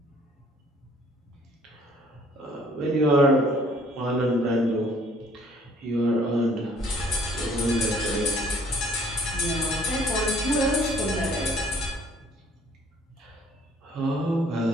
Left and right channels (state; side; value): normal; both; correlation 0.59